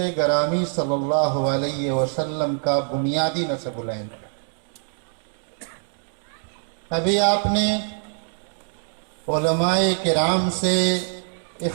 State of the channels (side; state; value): left; silent; digital silence